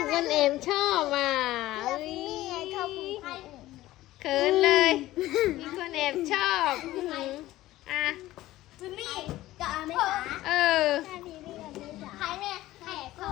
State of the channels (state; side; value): quieter; right; 16.1 dB